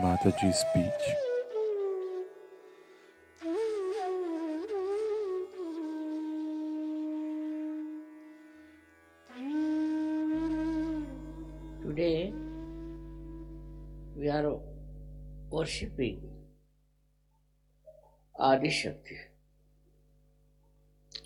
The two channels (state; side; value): identical; both; correlation 1.00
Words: speech. Today we are worshipping Adi Shakti.